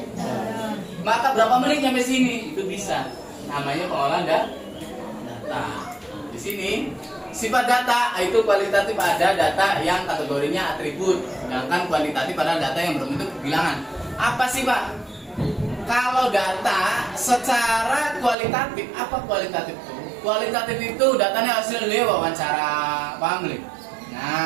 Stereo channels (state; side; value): drops out; left; at 18.4 s